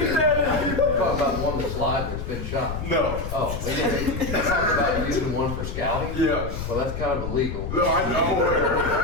talking about the one that's live that's been shot. no. Oh, we didn't talk about using one for scouting? Yeah. Well, that's kind of illegal. No, I know.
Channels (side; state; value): left; noise; rumble, 6 dB below the sound